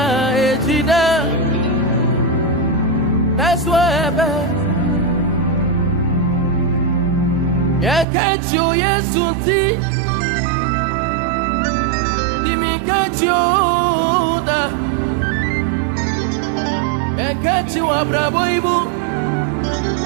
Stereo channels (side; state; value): left; drops out; at 8.1 s